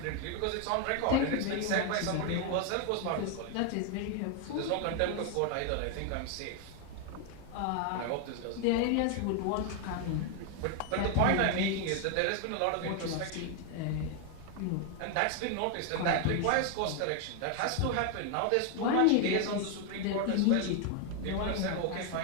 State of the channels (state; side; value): different; both; correlation 0.01